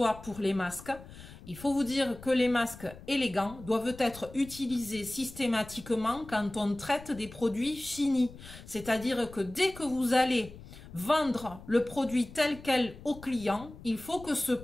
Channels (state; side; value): noise; left; rumble, 17 dB below the sound